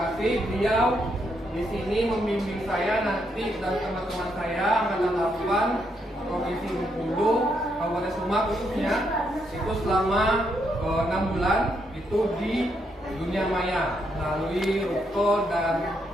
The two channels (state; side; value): normal; both; correlation 0.78